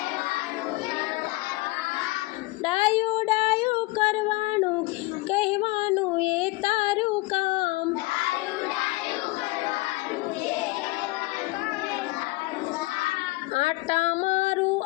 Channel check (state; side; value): quieter; right; 22.2 dB